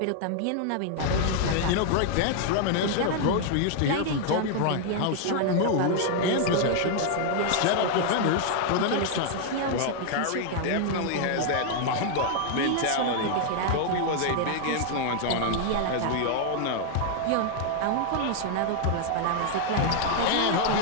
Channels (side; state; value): both; different; correlation 0.00